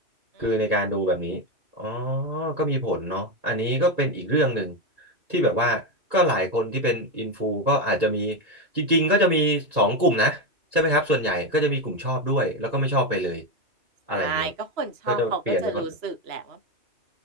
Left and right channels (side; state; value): left; late; 2.3 ms